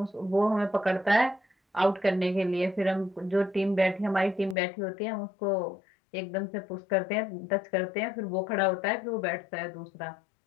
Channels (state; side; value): drops out; right; at 4.5 s